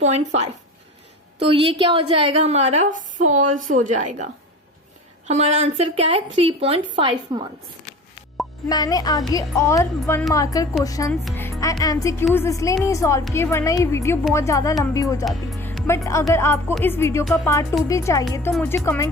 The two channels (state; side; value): normal; both; correlation 0.37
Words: तो ये क्या हो जाएगा, हमारा फॉल्स हो जाएगा। हमारा आंसर क्या है, 3.5 मंथ्स। मैंने आगे और 1 मार्कर क्वेश्चंस एंड एमसीक्यूज इसलिए नहीं सॉल्व किए, वरना ये वीडियो बहुत ज़्यादा लंबी हो जाती। बट अगर आपको इस वीडियो का पार्ट 2 भी चाहिए तो मुझे